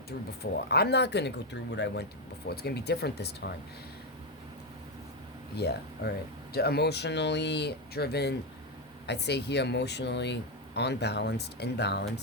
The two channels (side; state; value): both; normal; correlation 0.06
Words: through before. I'm not going to go through what I went through before. It's going to be different this time. Yeah, alright. Emotionally driven, I'd say here emotionally unbalanced,